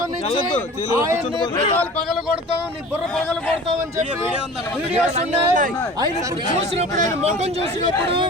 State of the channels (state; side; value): normal; both; correlation 0.40